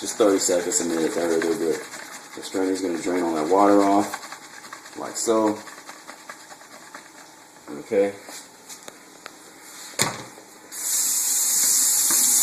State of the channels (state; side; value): identical; both; correlation 1.00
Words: just 30 seconds, a minute, they're good. The strainer's going to drain all that water off, like so. Okay.